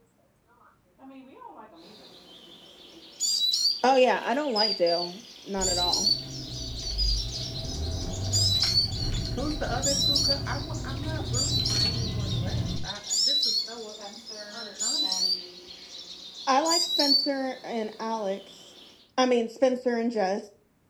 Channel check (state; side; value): identical; both; correlation 1.00